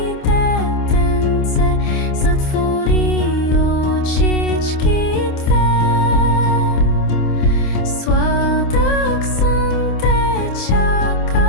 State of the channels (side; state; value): right; late; 27 ms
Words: детенце, затвори очички две. Сладък сън те